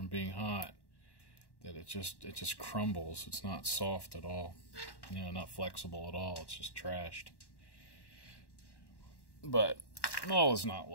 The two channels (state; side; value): late; right; 1.1 ms